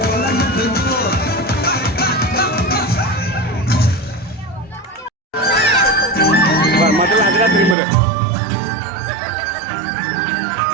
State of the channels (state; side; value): drops out; left; at 7.8 s